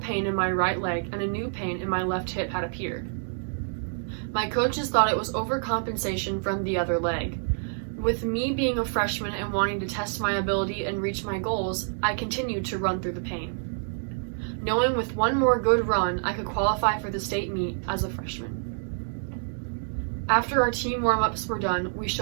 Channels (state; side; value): silent; left; digital silence